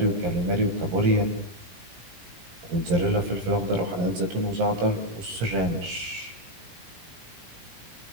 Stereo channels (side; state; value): left; late; 17 ms